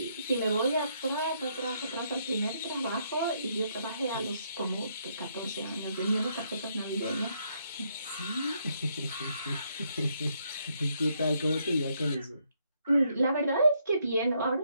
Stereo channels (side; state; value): both; inverted; correlation -0.74